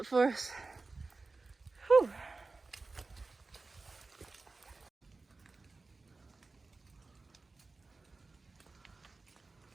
for us. Whew.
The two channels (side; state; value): left; quieter; 3.7 dB